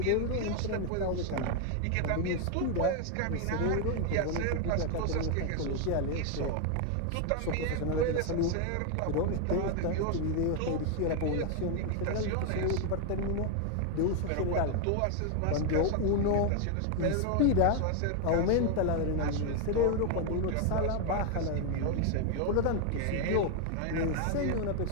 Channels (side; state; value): both; different; correlation 0.00